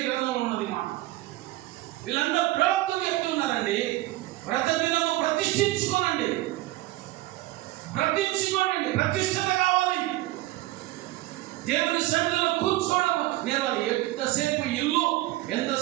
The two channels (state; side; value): quieter; left; 17.7 dB